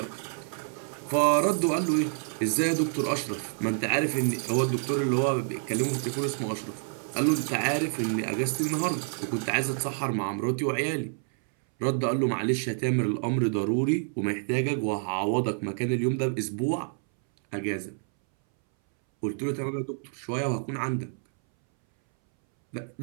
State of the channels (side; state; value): left; silent; 59 dB below the other